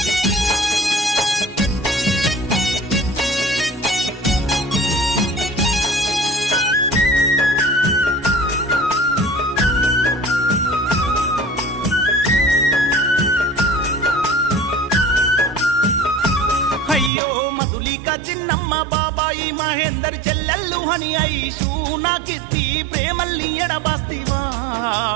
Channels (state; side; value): drops out; left; at 17.1 s